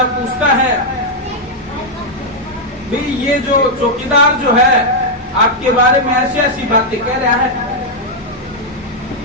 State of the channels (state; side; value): normal; both; correlation -0.03